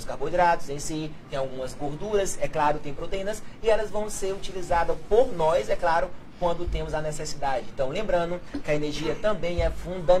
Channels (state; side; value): identical; both; correlation 1.00